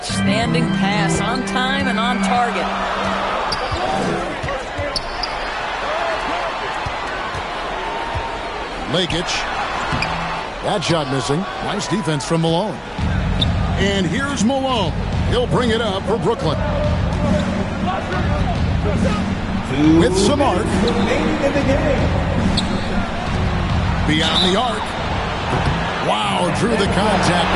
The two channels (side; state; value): both; identical; correlation 1.00